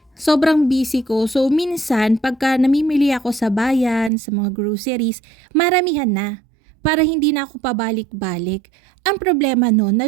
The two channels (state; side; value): drops out; left; at 4.1 s